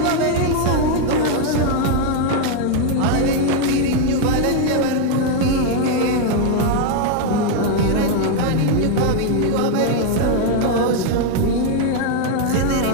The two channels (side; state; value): both; different; correlation 0.00